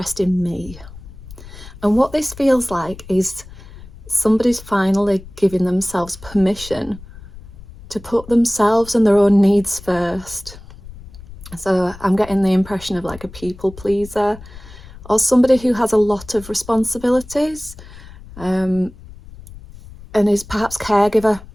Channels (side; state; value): left; noise; rumble, 17 dB below the sound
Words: in me. And what this feels like is somebody's finally giving themselves permission to put themselves and their own needs first. So I'm getting the impression of like a people pleaser or somebody who has a lot of responsibilities and is perhaps caregiver